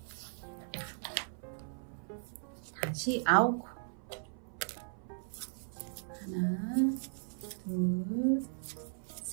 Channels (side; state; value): left; silent; 53 dB below the other